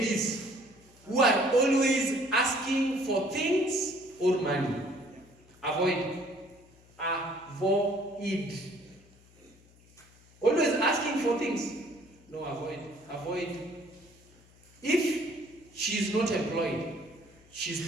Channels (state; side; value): noise; left; hum, 27 dB below the sound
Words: who are always asking for things or money. Avoid. Avoid. Always asking for things. No, avoid. Avoid. If she is not employed,